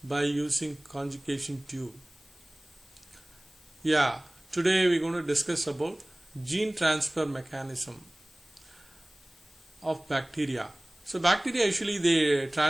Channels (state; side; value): noise; left; hiss, 27 dB below the sound